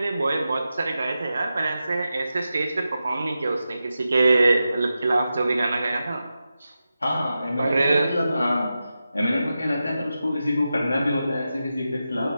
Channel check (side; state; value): both; inverted; correlation -0.91